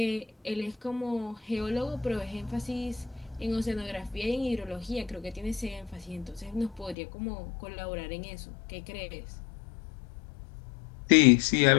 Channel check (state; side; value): drops out; right; at 7.0 s